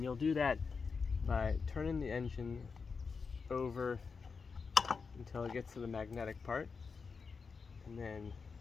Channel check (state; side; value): quieter; right; 5.1 dB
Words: you'll do that by turning the engine over until it gets to the magnetic part, and then